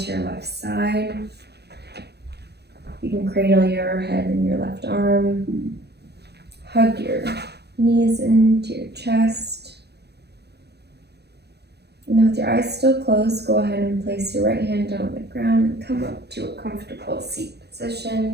your left side. You can cradle your head in your left arm. Hug your knees into your chest. And then with your eyes still closed, go ahead and place your right hand down on the ground and come up to a comfortable seat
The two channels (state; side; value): late; left; 0.48 ms